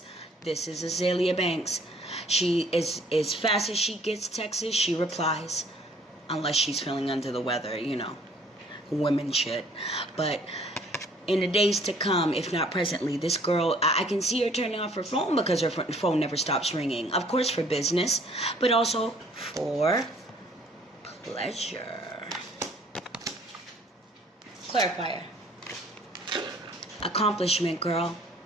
this is Azealia Banks. She is, as fast as she gets texts, she replies. Unless she's feeling under the weather, you know, women shit. But in the days to come, if not presently, this girl, I can see her turning off her phone because her phone never stops ringing. Of course for business, but also for pleasure. Clarifier. Accomplishment, girl.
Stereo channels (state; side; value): normal; both; correlation 0.58